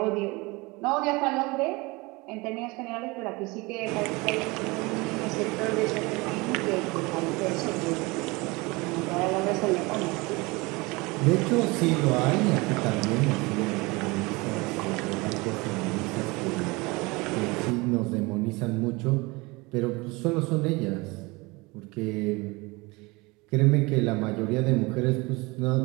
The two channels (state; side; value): quieter; left; 24.6 dB